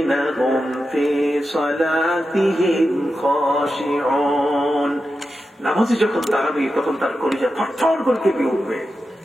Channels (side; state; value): both; normal; correlation 0.90